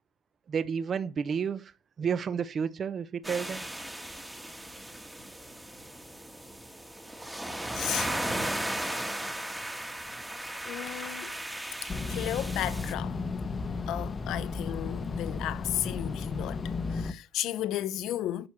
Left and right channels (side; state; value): both; normal; correlation 0.72